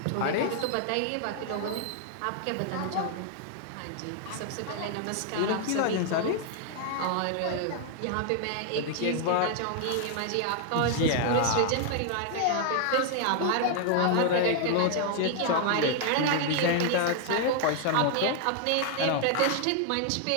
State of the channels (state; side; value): different; both; correlation 0.00